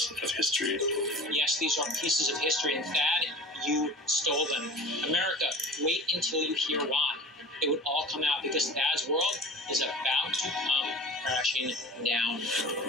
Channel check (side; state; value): both; normal; correlation 0.38